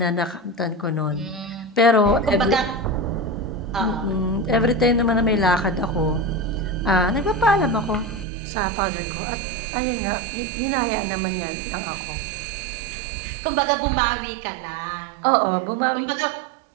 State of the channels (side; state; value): left; drops out; at 8.2 s